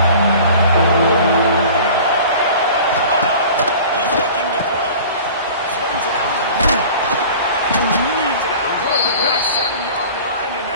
He's looking to throw. Swings it out to the field. Gets it out to the 37-yard line, and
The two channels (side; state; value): both; inverted; correlation -0.42